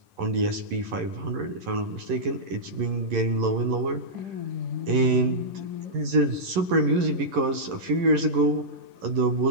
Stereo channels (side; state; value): left; late; 11 ms